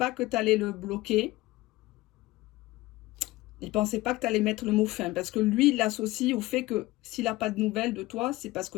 que tu allais le bloquer. Il ne pensait pas que tu allais mettre le mot fin. Parce que lui, il l'associe au fait que s'il n'a pas de nouvelles de toi, c'est parce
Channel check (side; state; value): right; quieter; 19.0 dB